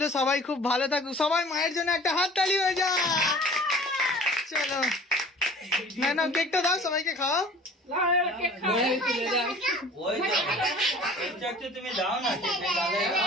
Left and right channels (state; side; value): normal; both; correlation 0.46